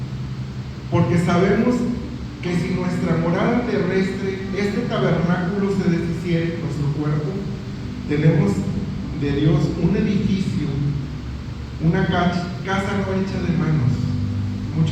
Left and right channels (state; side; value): identical; both; correlation 1.00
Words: porque sabemos que si nuestra morada terrestre, este tabernáculo, se deshiciere, nuestro cuerpo, tenemos de Dios un edificio, una casa no hecha de manos,